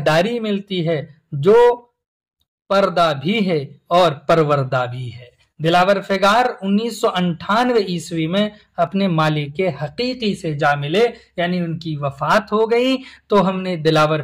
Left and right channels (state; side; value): identical; both; correlation 1.00